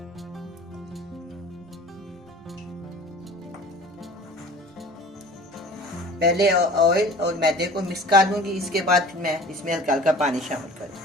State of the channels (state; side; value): normal; both; correlation 0.44